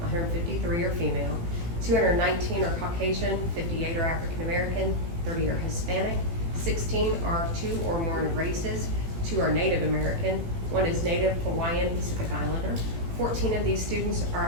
are female, 219 are Caucasian, 58 are African American, 30 are Hispanic, 16 are 2 or more races, 2 are Native American, 1 is Native Hawaiian Pacific Islander. 14 of these students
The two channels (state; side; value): late; left; 17 ms